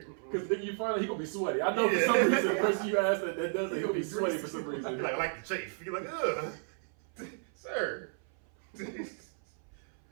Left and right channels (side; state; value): left; silent; 55 dB below the other